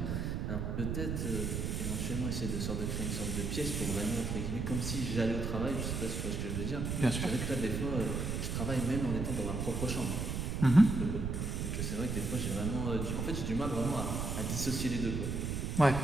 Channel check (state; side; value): noise; right; rumble, 2 dB below the sound